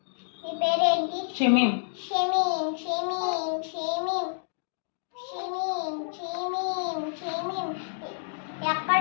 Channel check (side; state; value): right; silent; digital silence